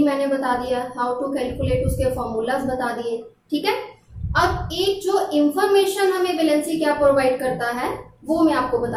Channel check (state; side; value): identical; both; correlation 1.00